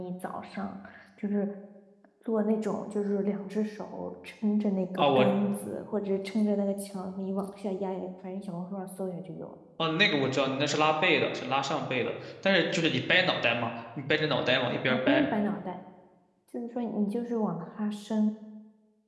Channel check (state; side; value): identical; both; correlation 1.00